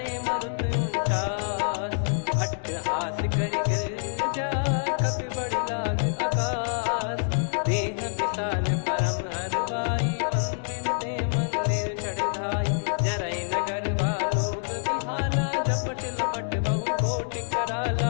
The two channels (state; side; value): silent; right; digital silence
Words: मरुत 49। अट्टहास करि गिरजा कपि बड़ी लाग आकाश। देह विशाल परम हरवाई मंदिर ते मंदिर चढ़ धाई। जरई नगर बालोग बिहाला झपट लपट बहु कोटि कराला।